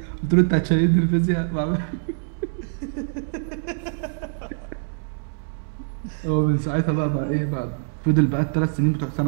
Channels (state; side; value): silent; left; 63 dB below the other